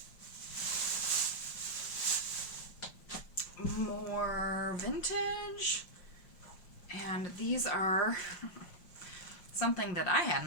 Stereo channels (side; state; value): right; late; 5.6 ms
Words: More vintage. And these are something that I had